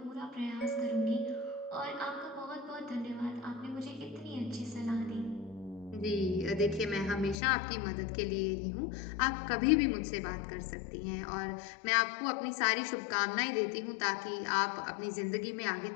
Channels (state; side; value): drops out; right; at 7.4 s